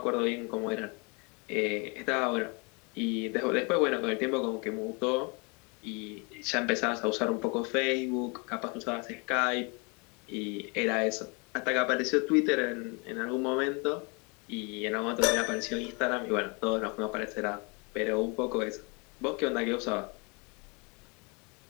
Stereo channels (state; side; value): quieter; right; 31.8 dB